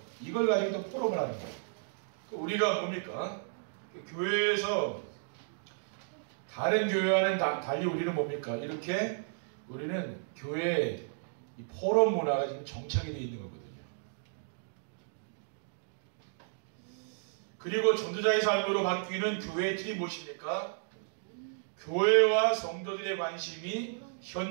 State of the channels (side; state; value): left; silent; digital silence